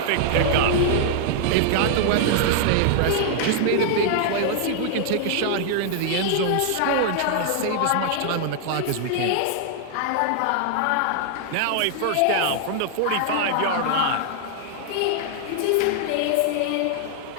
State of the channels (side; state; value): both; different; correlation -0.01